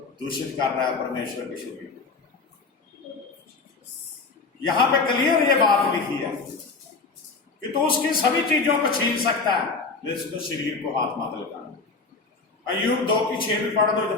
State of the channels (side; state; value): right; quieter; 4.2 dB